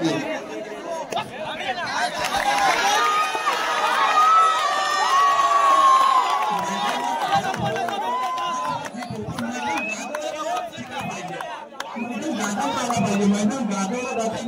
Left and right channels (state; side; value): identical; both; correlation 1.00